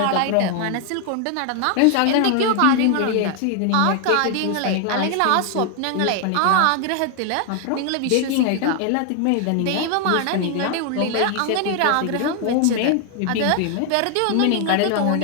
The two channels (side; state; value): both; different; correlation 0.00